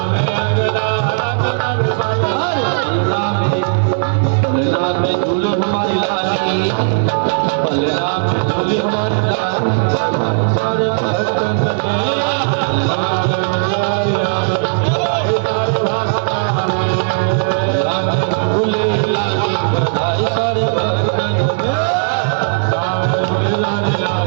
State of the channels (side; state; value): left; silent; digital silence